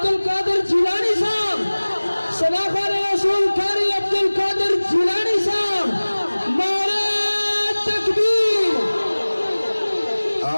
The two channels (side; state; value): both; inverted; correlation -1.00